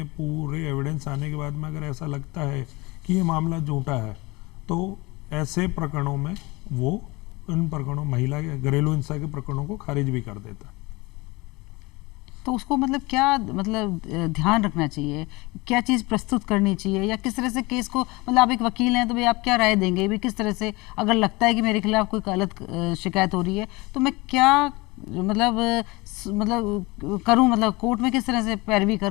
पूरे एविडेंस आने के बाद में अगर ऐसा लगता है कि ये मामला झूठा है, तो ऐसे प्रकरणों में वो इन प्रकरणों, महिला के घरेलू हिंसा के प्रकरणों को खारिज भी कर देता है। तो उसको मतलब क्या मतलब ध्यान रखना चाहिए, क्या चीज़ प्रस्तुत करनी चाहिए, या किस तरह से केस को, मतलब आप एक वकील हैं तो भाई आप क्या राय देंगे भी, किस तरह से अगर लगता है कि मेरे खिलाफ कोई गलत शिकायत हो रही है तो मैं क्या मतलब करूं, मतलब कोर्ट में किस तरह से पैरवी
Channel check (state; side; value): quieter; right; 23.6 dB